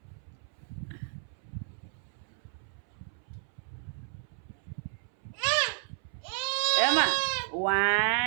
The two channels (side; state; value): left; silent; 57 dB below the other